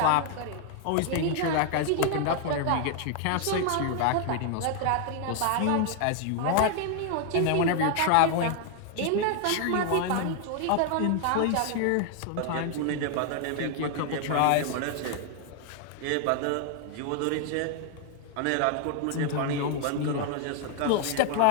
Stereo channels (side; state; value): both; different; correlation 0.00